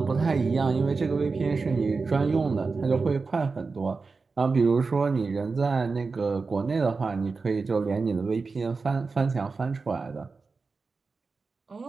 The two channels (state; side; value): quieter; left; 4.3 dB